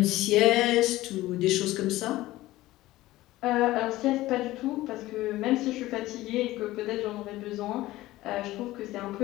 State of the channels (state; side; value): quieter; right; 17.1 dB